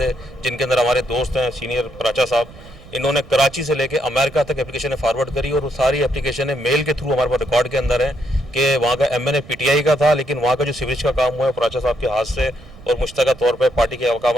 जिनके अंदर हमारे दोस्त हैं सीनियर प्राचा साहब, इन्होंने कराची से लेके अमेरिका तक एप्लीकेशन फॉरवर्ड करी। और वो सारी एप्लीकेशन मेल के थ्रू हमारे पास रिकॉर्ड के अंदर है कि वहाँ का MNA PTI का था, लेकिन वहाँ का जो सीवरेज का काम हुआ है प्राचा साहब के हाथ से और मुश्तरका तौर पर पार्टी के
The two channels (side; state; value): right; noise; rumble, 20 dB below the sound